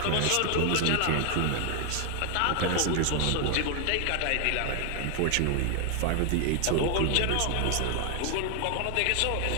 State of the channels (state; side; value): different; both; correlation 0.00